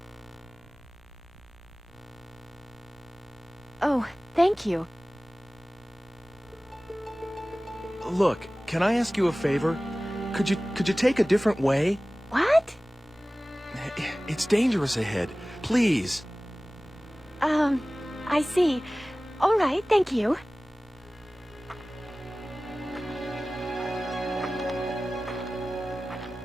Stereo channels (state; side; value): noise; right; rumble, 29 dB below the sound